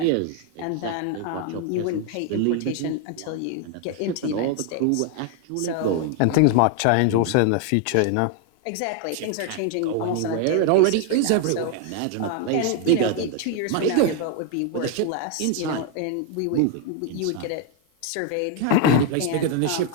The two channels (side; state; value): both; different; correlation 0.01